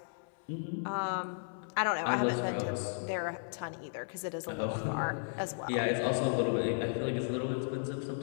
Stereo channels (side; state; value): right; silent; 55 dB below the other